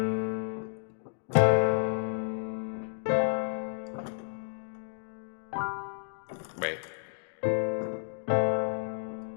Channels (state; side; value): silent; right; digital silence